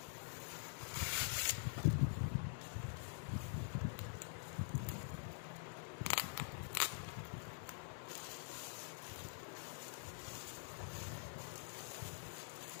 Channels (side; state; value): right; silent; digital silence